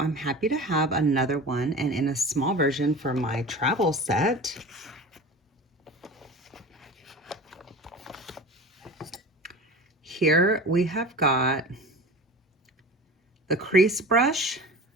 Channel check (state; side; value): normal; both; correlation 0.34